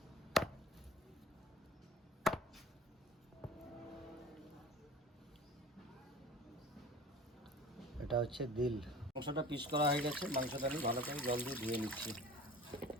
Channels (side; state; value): both; normal; correlation 0.41